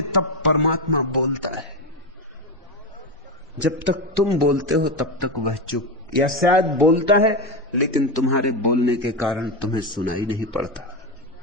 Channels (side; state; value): both; normal; correlation 0.13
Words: तब परमात्मा बोलता है। जब तक तुम बोलते हो तब तक वह चुप, या शायद बोलता है लेकिन तुम्हारे बोलने के कारण तुम्हें सुनाई नहीं पड़ता।